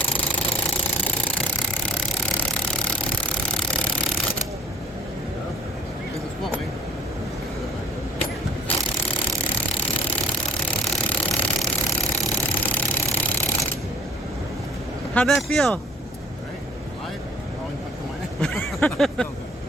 How'd that feel?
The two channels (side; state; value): both; normal; correlation 0.54